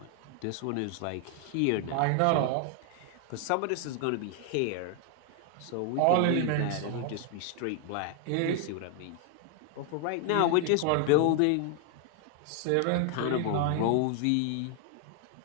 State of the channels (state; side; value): different; both; correlation 0.00